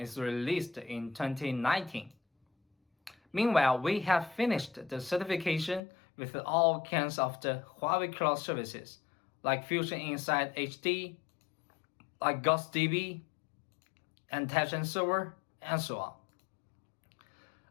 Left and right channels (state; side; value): drops out; right; at 5.8 s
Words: released in 2019. Meanwhile, we have finished the certification with all kinds of the Huawei Cloud services, like Fusion Insight HD, like GhostDB, Intelligent Server, and so on.